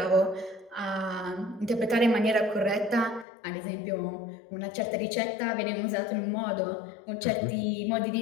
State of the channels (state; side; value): drops out; right; at 3.2 s